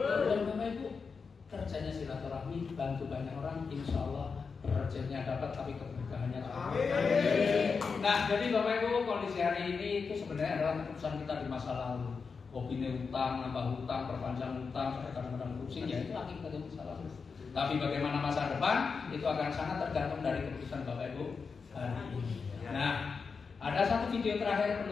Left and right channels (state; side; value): quieter; right; 5.2 dB